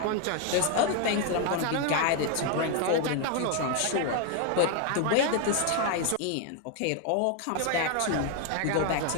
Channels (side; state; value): both; different; correlation 0.01